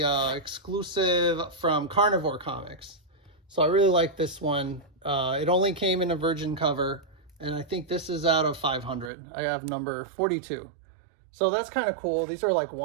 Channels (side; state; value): left; drops out; at 9.1 s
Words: exclusive from Carnivore Comics. So I really like this one. It only came in a virgin cover, and I think this is out of 500. I have number 42. So that's kind of cool. These are like